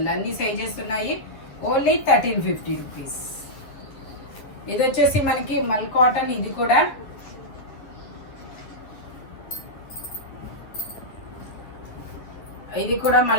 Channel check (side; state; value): right; late; 10 ms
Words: అన్ని సైజెస్ ఉన్నాయి. Only 1350 rupees. ఇది వచ్చేసి మనకి మల్ కాటన్. ఇది కూడా